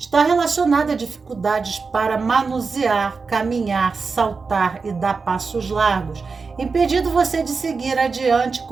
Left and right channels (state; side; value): quieter; left; 4.7 dB